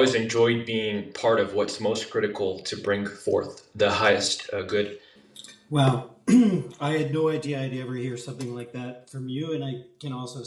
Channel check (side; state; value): both; identical; correlation 1.00